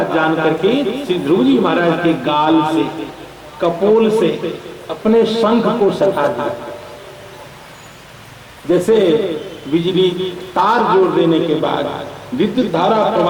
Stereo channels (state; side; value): identical; both; correlation 1.00